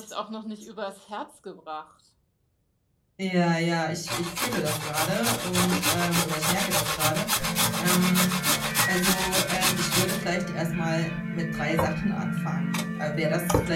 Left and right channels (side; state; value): both; identical; correlation 1.00